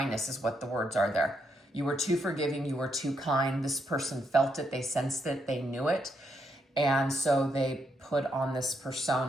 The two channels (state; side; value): normal; both; correlation 0.78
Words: is what the words are there. You were too forgiving. You were too kind. This person felt it. They sensed it. They knew it. And so they put on this